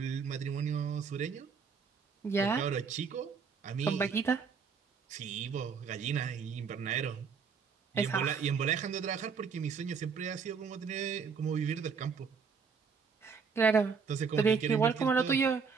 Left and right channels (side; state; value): left; quieter; 5.8 dB